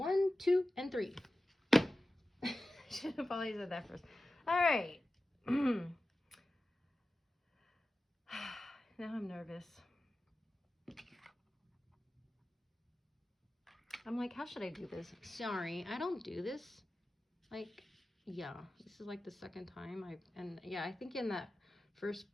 2, and 3. Should have probably said that first. All right. Now I'm nervous. I'm like, how should I do this? Sorry, I don't do this. Like, yeah, this is like the second time I think in that first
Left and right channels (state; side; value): normal; both; correlation 0.94